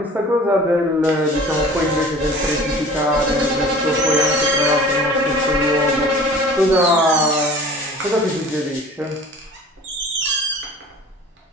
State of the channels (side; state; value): both; normal; correlation 0.44